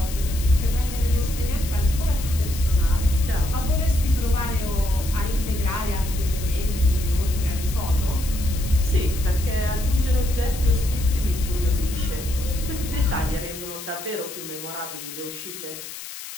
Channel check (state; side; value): noise; left; hiss, 11 dB below the sound